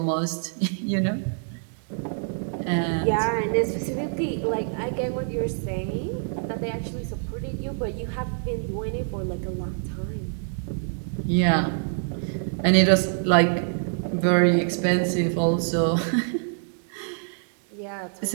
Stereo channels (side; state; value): left; silent; digital silence